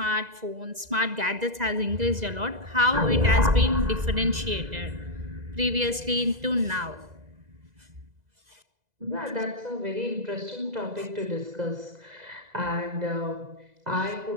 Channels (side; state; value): left; late; 2.0 ms